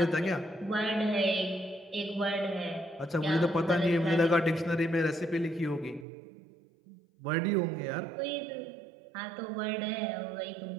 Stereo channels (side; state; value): left; drops out; at 6.1 s